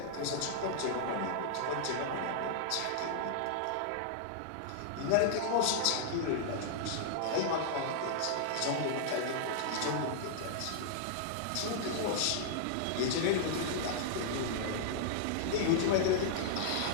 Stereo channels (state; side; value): different; both; correlation -0.01